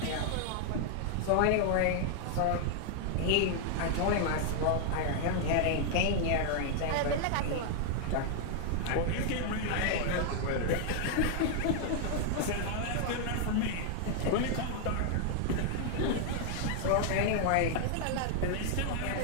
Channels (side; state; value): both; different; correlation 0.00